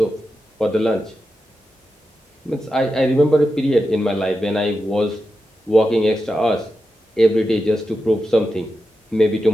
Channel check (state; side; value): normal; both; correlation 0.89